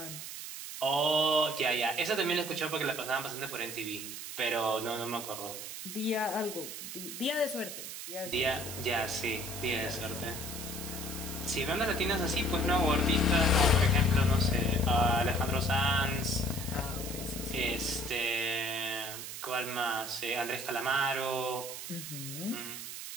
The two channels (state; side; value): noise; right; hiss, 8 dB below the sound